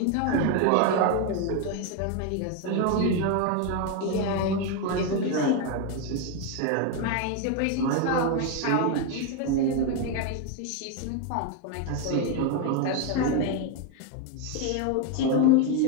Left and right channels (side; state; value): both; different; correlation 0.02